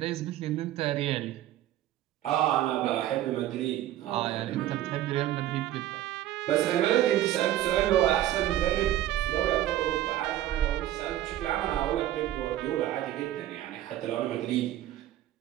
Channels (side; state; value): left; quieter; 13.3 dB